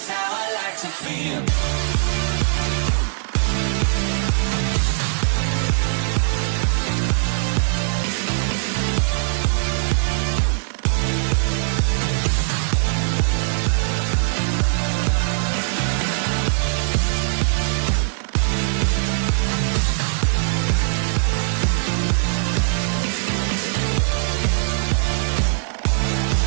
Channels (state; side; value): silent; left; digital silence